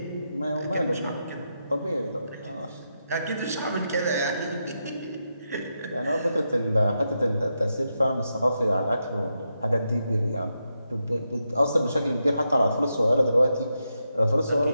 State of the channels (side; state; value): both; inverted; correlation -0.85